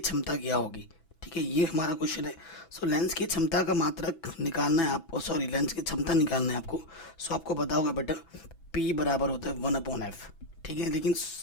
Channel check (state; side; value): late; right; 6.0 ms